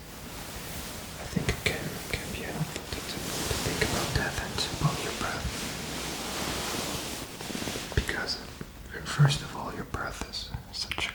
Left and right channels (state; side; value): identical; both; correlation 1.00